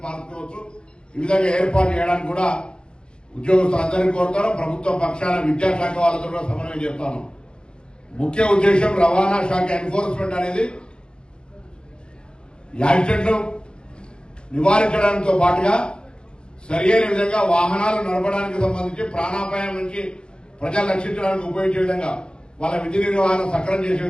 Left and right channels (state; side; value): late; right; 0.051 ms